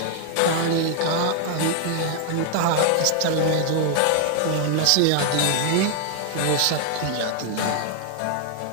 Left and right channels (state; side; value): different; both; correlation 0.00